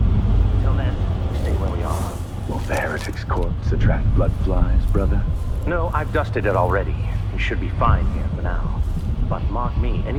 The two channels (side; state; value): both; identical; correlation 1.00